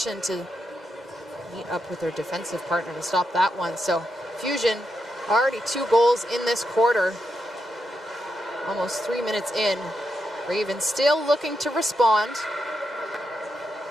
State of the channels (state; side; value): normal; both; correlation 0.84